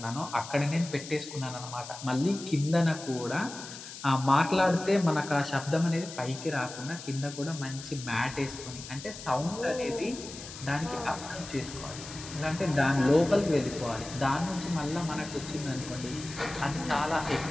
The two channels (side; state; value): left; noise; hiss, 12 dB below the sound